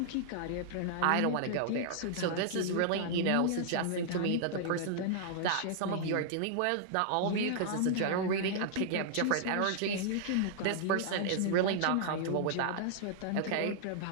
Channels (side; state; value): both; different; correlation -0.01